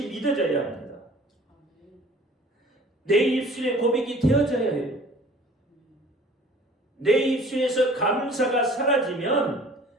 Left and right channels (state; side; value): normal; both; correlation 0.49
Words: 믿어져야 합니다. 내 입술에 고백이 되어져야 해요. 내 입술에서 감사가 사라지면